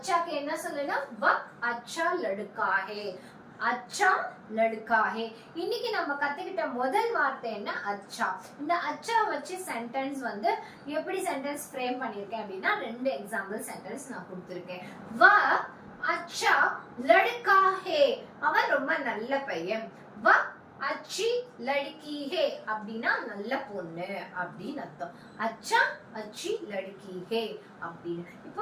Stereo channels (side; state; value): both; identical; correlation 1.00